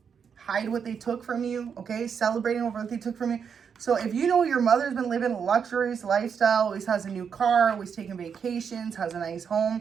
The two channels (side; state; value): left; quieter; 6.9 dB